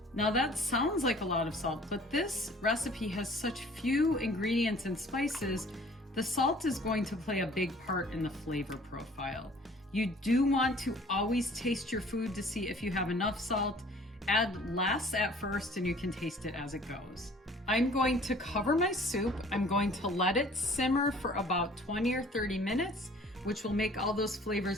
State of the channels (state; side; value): normal; both; correlation 0.52